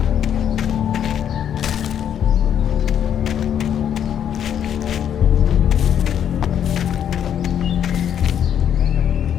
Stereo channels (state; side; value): quieter; right; 9.2 dB